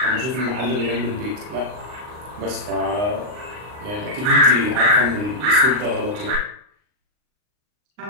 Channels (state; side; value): late; left; 39 ms